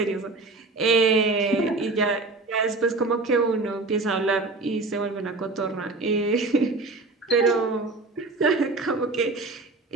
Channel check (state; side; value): quieter; left; 3.4 dB